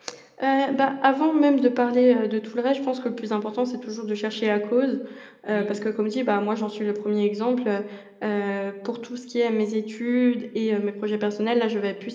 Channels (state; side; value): identical; both; correlation 1.00